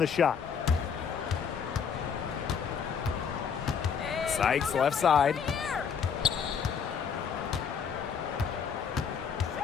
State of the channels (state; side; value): quieter; right; 6.7 dB